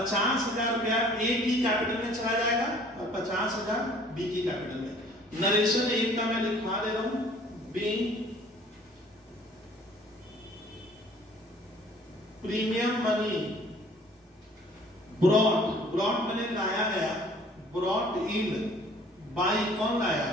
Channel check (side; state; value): both; normal; correlation 0.54